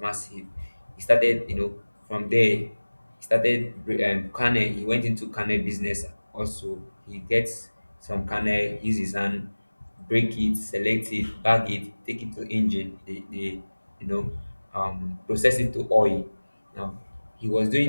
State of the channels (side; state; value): both; inverted; correlation -1.00